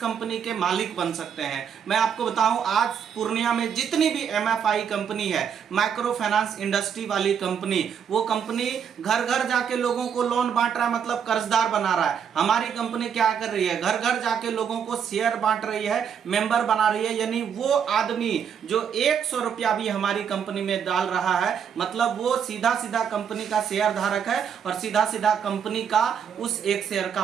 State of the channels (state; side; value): quieter; left; 7.7 dB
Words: के मालिक बन सकते हैं। मैं आपको बताऊं, आज पूर्णिया में जितनी भी MFI कंपनी है, माइक्रो फाइनेंस इंडस्ट्री वाली कंपनी, वो कंपनी घर घर जाके लोगों को लोन बांट रहा है, मतलब कर्जदार बना रहा है। हमारी कंपनी क्या कर रही है? घर घर जाके लोगों को शेयर बांट रही है, मेंबर बना रही है। यानी वो आदमी जो 100 रुपया भी हमारी कंपनी में डाल रहा है, मतलब वो सीधा सीधा कंपनी का शेयर धारक है और सीधा सीधा सीधा कंपनी का उस एक शेयर का